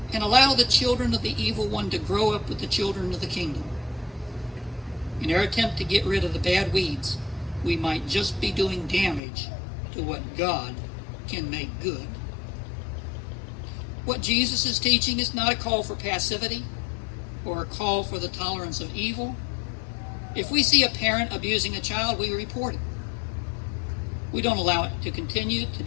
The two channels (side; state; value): right; drops out; at 9.2 s